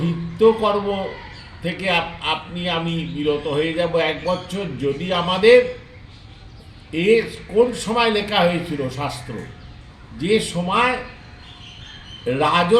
কর্ম থেকে আমি বিরত হয়ে যাব 1 বছর, যদি আমাদের কোন সময় লেখা হয়েছিল শাস্ত্র, যে সময়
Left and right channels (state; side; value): identical; both; correlation 1.00